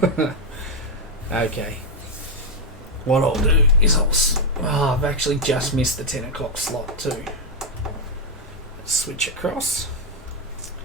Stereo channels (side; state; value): both; normal; correlation 0.02